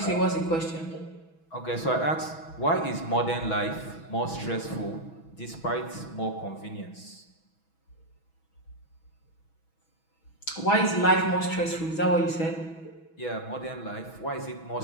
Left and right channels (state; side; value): late; right; 6.2 ms